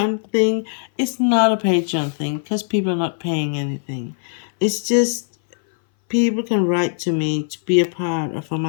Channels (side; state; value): right; silent; 61 dB below the other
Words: thing. It's not a Patreon thing because people are not paying anything. It's just people can write to me to be a part of